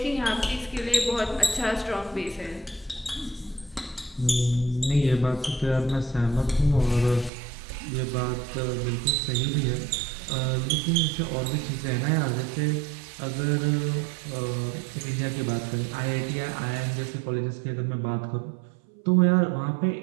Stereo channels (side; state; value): left; drops out; at 7.3 s